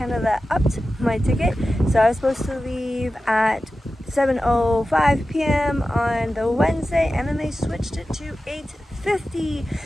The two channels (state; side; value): normal; both; correlation 0.94